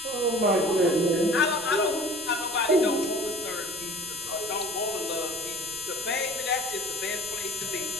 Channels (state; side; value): noise; right; rumble, 24 dB below the sound